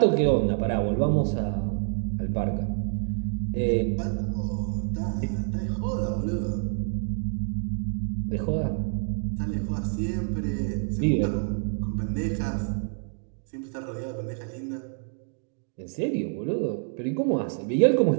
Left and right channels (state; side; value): silent; left; 60 dB below the other